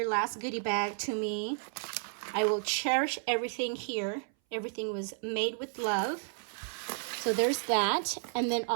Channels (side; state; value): left; silent; 56 dB below the other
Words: last goodie bag to me. I will cherish everything here. Everything was made with love. So there's that. And then